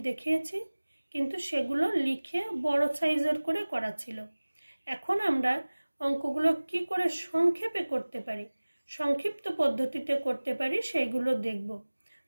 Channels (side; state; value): both; inverted; correlation -1.00